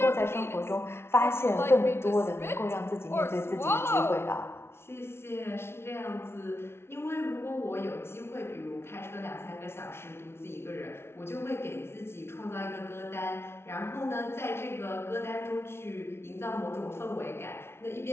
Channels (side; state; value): right; late; 0.12 ms